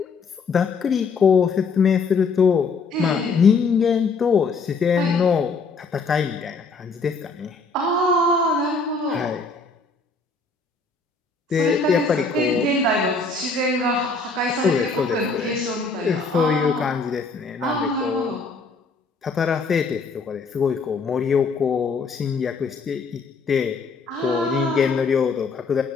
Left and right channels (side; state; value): right; quieter; 4.3 dB